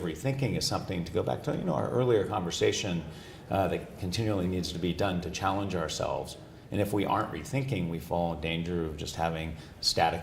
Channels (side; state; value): both; identical; correlation 1.00